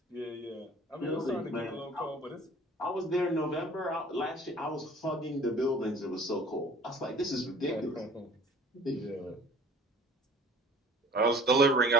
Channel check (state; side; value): normal; both; correlation 0.48